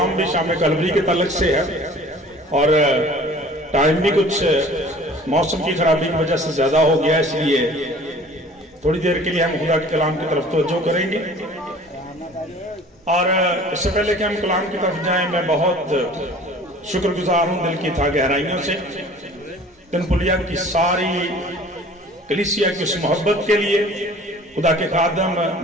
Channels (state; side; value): normal; both; correlation 0.48